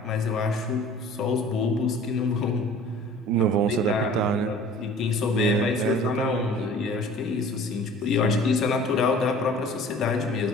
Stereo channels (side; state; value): both; normal; correlation 0.47